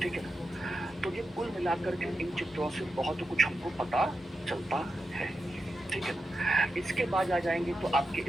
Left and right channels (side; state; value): both; normal; correlation 0.89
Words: ठीक है ना। तो ये कुल मिलाकर के इन चित्रों से बहुत कुछ हमको पता चलता है, ठीक है ना। इसके बाद आ जाएंगे तो आपके